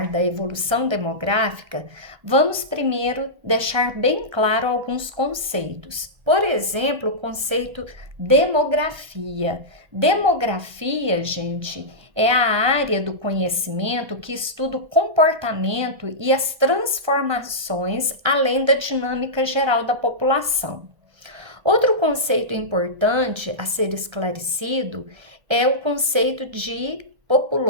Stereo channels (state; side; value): late; left; 1.3 ms